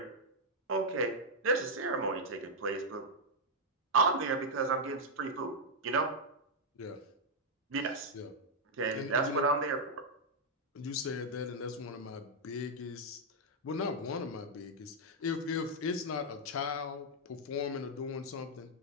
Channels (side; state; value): both; normal; correlation -0.03